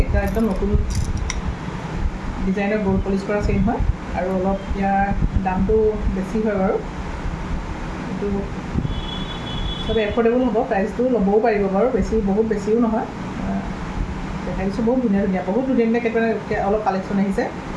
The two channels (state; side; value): identical; both; correlation 1.00